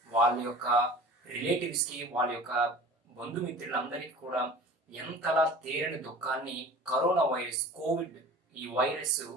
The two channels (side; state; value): both; normal; correlation 0.41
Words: వాళ్ళ యొక్క రిలేటివ్స్‌కి, వాళ్ళ యొక్క బంధుమిత్రులందరికీ కూడా ఎంతలా తీరని దుఃఖాన్ని కరోనా వైరస్, కోవిడ్ ఈ వైరస్